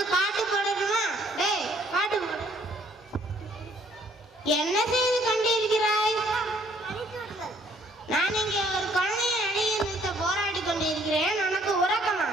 பாட்டு போடணுமா? டேய், பாட்டு போடு. என்ன செய்து கொண்டிருக்கிறாய்? நான் இங்கே ஒரு குழந்தைய நடிகை நிறுத்த போராடி கொண்டிருக்கிறேன். உனக்கு உறக்கமா?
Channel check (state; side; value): normal; both; correlation 0.62